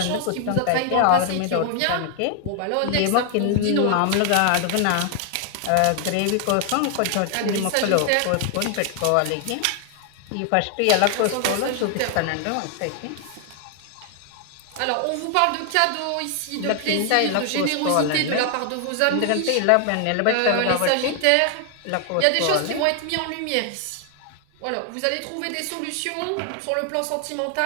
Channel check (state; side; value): different; both; correlation 0.00